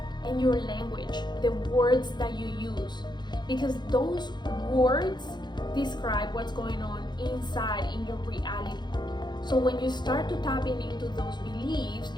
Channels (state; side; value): late; right; 0.21 ms